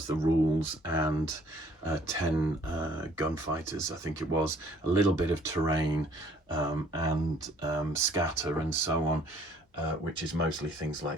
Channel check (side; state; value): both; normal; correlation 0.59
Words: the rules and 10 gunfighters, I think it was, a little bit of terrain and scatter and so on, which is mostly things